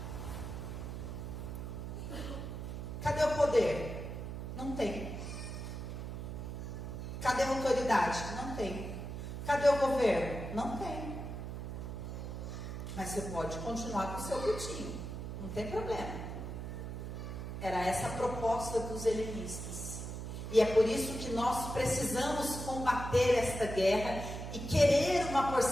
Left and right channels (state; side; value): noise; right; hum, 6 dB below the sound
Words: Cadê o poder? Não tem. Cadê a autoridade? Não tem. Cadê o governo? Não tem. Mas você pode continuar com o seu cultinho. Não tem problema. Era essa a proposta dos helenistas. E é por isso que nós precisamos combater esta guerra e querer uma